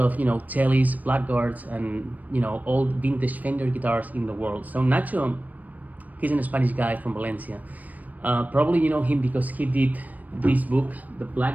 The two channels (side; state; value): left; late; 0.078 ms